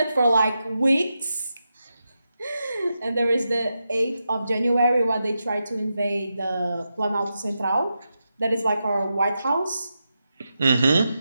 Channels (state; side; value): inverted; both; correlation -0.88